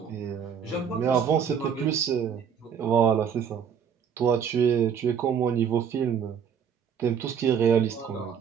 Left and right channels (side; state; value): left; quieter; 7.5 dB